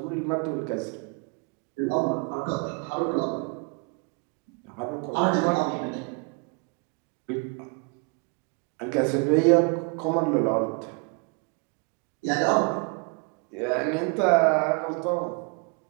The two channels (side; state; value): left; quieter; 34.1 dB